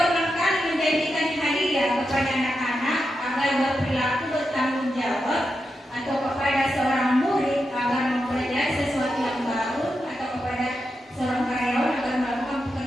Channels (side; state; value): both; normal; correlation 0.87